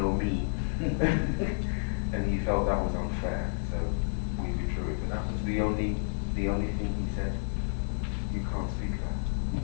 and he felt that was unfair, so we withdrew it. But that was the only thing he said. You can't speak that.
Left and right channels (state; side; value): silent; right; digital silence